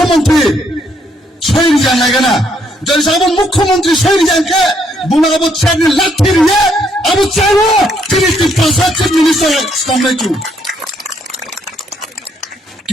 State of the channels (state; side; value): normal; both; correlation 0.71